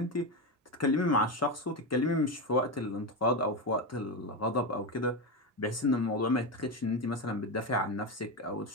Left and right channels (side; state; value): both; normal; correlation 0.15